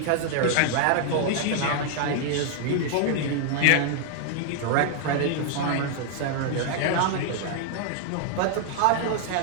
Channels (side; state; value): both; different; correlation 0.00